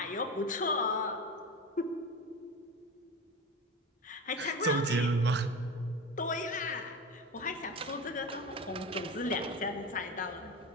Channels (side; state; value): both; normal; correlation 0.26